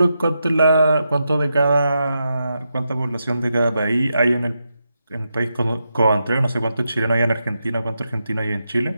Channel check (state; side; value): inverted; both; correlation -0.86